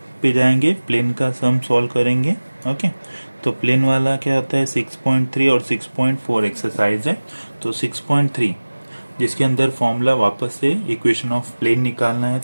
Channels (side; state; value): both; inverted; correlation -1.00